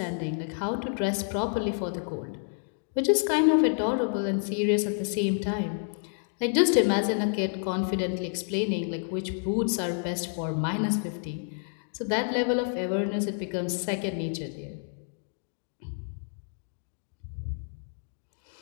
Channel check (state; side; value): silent; right; 58 dB below the other